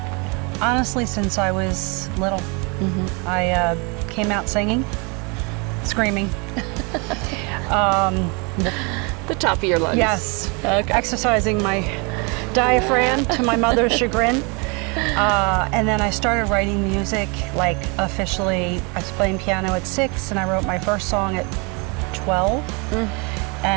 honestly, since I was little. I came out singing, screaming. the top of your lungs. Yes, Okay. exercising my diaphragm to my mother's chagrin. And then I started writing music, like officially. I was playing piano at 6, and I wrote my first song at 12.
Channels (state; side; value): quieter; left; 31.3 dB